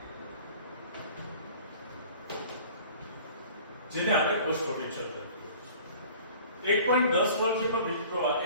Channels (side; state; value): both; inverted; correlation -0.47